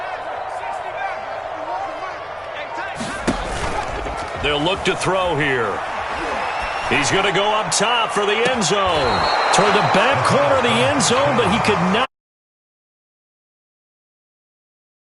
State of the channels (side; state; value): both; identical; correlation 1.00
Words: They'll look to throw here. He's going to go up top for the end zone. Toward the back corner of the end zone, but he could not.